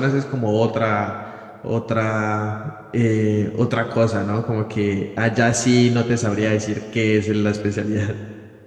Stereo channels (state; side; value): identical; both; correlation 1.00